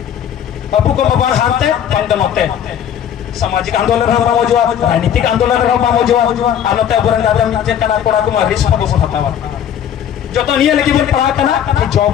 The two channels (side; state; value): right; quieter; 9.4 dB